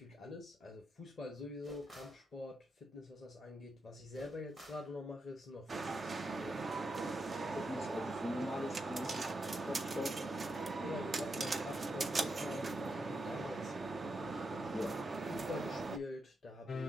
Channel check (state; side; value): normal; both; correlation 0.84